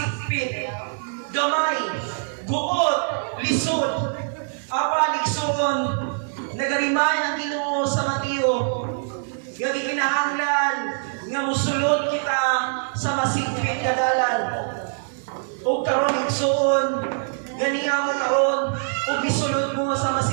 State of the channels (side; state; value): left; silent; digital silence